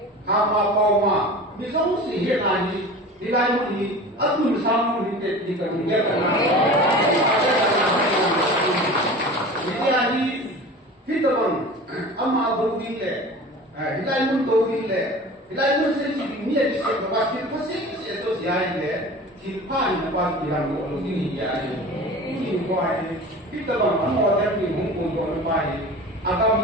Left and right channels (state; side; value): normal; both; correlation 0.37